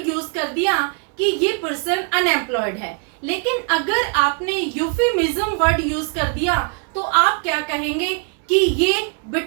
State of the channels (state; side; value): quieter; left; 39.5 dB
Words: यूज कर दिया कि ये पर्सन अनएम्प्लॉयड है। लेकिन अगर आपने यूफेमिज्म वर्ड यूज कर दिया तो आप क्या कहेंगे कि ये